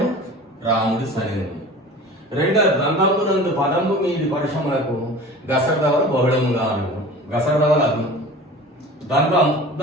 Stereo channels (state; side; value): normal; both; correlation 0.39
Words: రాముడి సని. రెండో ద్వంద్వమునందు పదము మీది పరిశ్రమలకు గసడదవలు బహుళముగా అను. గసడదవలు అగ్ను. ద్వంద్వం